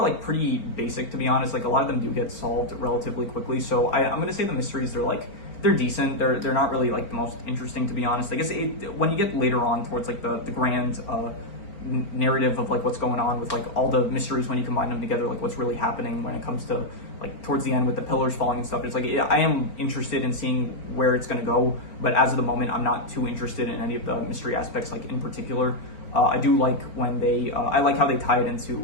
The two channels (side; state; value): right; late; 4.4 ms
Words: like pretty basic, to be honest. Like, a lot of them do get solved relatively quickly. So I'm going to say the mysteries, they're decent. They're not really like the most interesting, to be honest. I guess when you get later on towards like the grand narrative of like what's going on with like all the mysteries, when you combine them together, like what's really happening when it comes to like towards the end with the pillars falling and stuff, it's like, I am interested in seeing where it's going to go, but as of the moment, I'm not too interested in any of the mystery aspects, like in particular. I do like when I like how they tie it